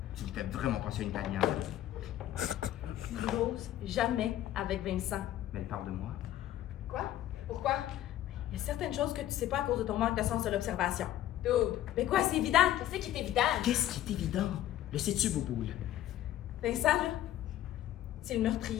Tu me fais vraiment penser à une Italienne. N'ose jamais avec Vincent. Mais elle parle de moi. Quoi? Pourquoi? Il y a certaines choses que tu sais pas à cause de ton manque de sens de l'observation. Dude, Mais quoi, c'est évident? qu'est-ce qui est évident? Qu'est-ce qui est évident? Le sais-tu, Bouboule? Vincent, là, c'est le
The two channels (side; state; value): right; quieter; 12.8 dB